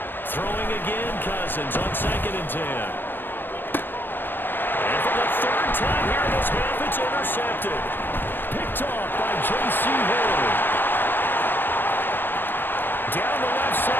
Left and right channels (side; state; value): right; late; 0.097 ms